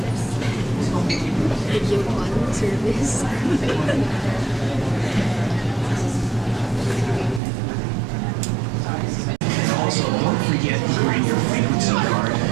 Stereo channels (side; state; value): left; drops out; at 7.4 s